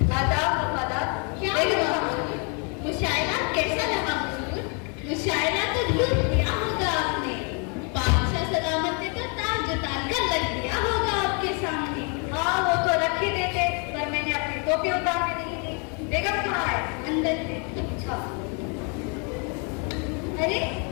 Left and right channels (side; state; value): right; quieter; 36.5 dB